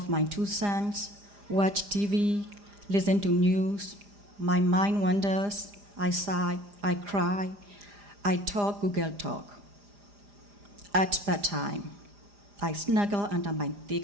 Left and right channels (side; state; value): left; late; 4.9 ms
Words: my two sons, watch TV, listen to news. My mind wanders. I sigh, I cry, I talk Google Talk. At bedtime, I snuggle under my